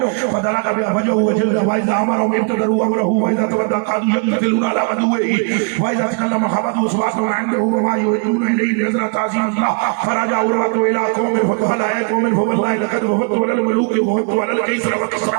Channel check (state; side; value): quieter; left; 37.4 dB